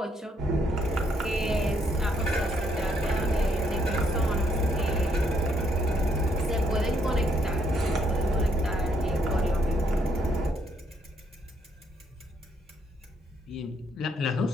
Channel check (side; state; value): both; normal; correlation 0.72